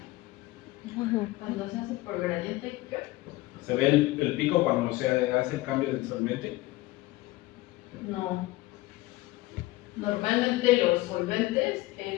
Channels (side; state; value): right; quieter; 19.3 dB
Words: Cuando se hace por gradiente, ¿qué? ¿Se ve el pico cuando se hace el cambio del solvente? No. Normalmente los solventes